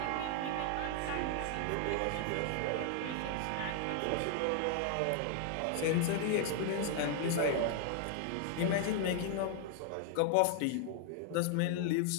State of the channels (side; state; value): both; different; correlation 0.00